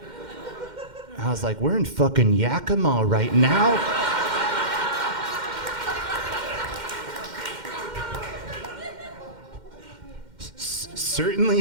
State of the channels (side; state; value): left; late; 2.1 ms